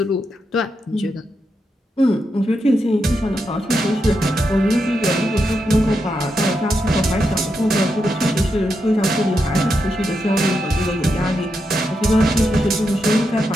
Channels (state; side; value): normal; both; correlation 0.85